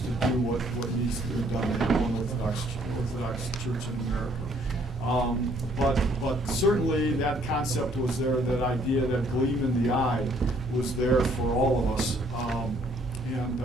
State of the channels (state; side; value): normal; both; correlation 0.64